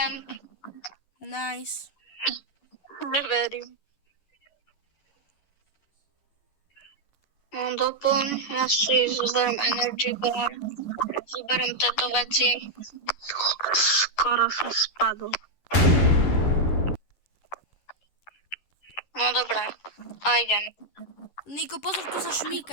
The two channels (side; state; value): right; late; 11 ms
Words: Nice. Neverím. No doplň, ja si zoberiem energy bar, zoberiem tieto veci. Skoro som spadol. No dobré, a idem. Niko, pozor, tu sa